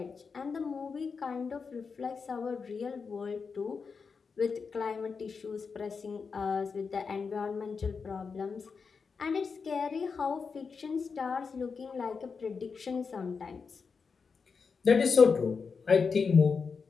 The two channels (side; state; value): right; quieter; 5.3 dB